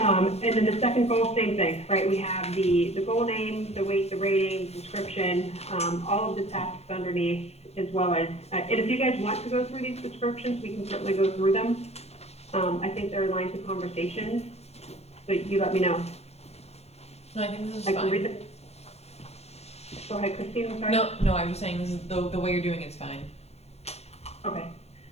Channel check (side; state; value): right; late; 0.31 ms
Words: then the second goal, same thing, right? We have the goal name, the weight, the rating, description, all of the tasks underneath, as well as, and if you guys want to go through these descriptions, we can certainly go through them. I think they're lines of conversations, so you let me know. No, I think this is I can read fine. them. Go ahead, Christine, I'm sorry. No, I was saying this is the way you're doing it's fine. Okay.